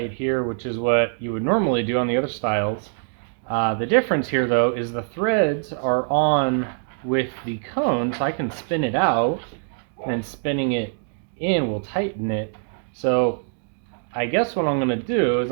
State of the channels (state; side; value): silent; left; digital silence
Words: here, which is what you would normally do on the other styles. The difference here though is the threads are on with the cone, so I can spin it out, and then spinning it in will tighten it. So I guess what I'm gonna do is